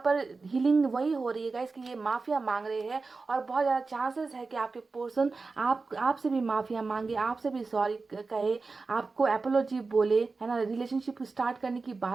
पर हीलिंग वही हो रही है गाइस कि ये माफिया मांग रहे हैं, और बहुत ज़्यादा चांसेस है कि आपके पर्सन आपसे भी माफिया मांगे, आपसे भी सॉरी कहे, आपको एपोलॉजी बोले, है ना, रिलेशनशिप स्टार्ट करने की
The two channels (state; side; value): quieter; left; 4.1 dB